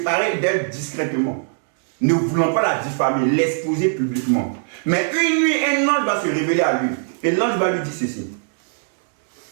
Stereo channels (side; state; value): left; silent; digital silence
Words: d'elle discrètement, ne voulant pas la diffamer, l'exposer publiquement. Mais une nuit, un ange va se révéler à lui, et l'ange va lui dire ceci.